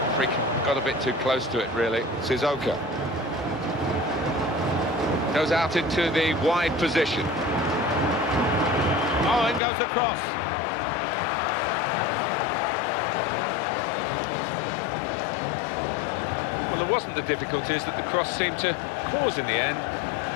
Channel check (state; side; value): drops out; right; at 9.6 s